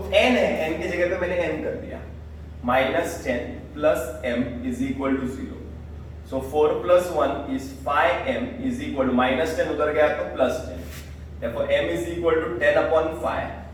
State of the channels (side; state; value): both; identical; correlation 1.00